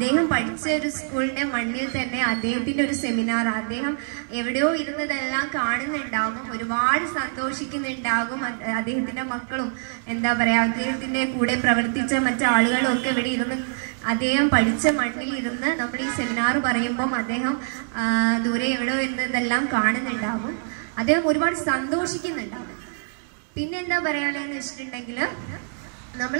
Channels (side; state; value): left; silent; 62 dB below the other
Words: പഠിച്ച ഒരു സ്കൂളിന്റെ മണ്ണിൽ തന്നെ അദ്ദേഹത്തിന്റെ ഒരു സെമിനാർ, അദ്ദേഹം എവിടെയോ ഇരുന്നതെല്ലാം കാണുന്നുണ്ടാകും, ഒരുപാട് സന്തോഷിക്കുന്നുണ്ടാകും. അദ്ദേഹത്തിന്റെ മക്കളും എന്താ പറയാ, അദ്ദേഹത്തിന്റെ കൂടെ പ്രവർത്തിച്ച മറ്റാളുകളും ഒക്കെ ഇവിടെ ഇരുന്ന് അദ്ദേഹം പഠിച്ച മണ്ണിൽ ഇരുന്ന് നമ്മൾ ഈ സെമിനാർ പറയുമ്പം അദ്ദേഹം ദൂരെ എവിടെയോ ഇരുന്നതെല്ലാം കാണുന്നുണ്ടാകും. അദ്ദേഹം ഒരുപാട് സന്തോഷിക്കുന്നുണ്ടാകും. പിന്നെ എന്താ പറയാനുള്ളതെന്ന് വെച്ചിട്ടുണ്ടെങ്കിൽ, നമ്മൾ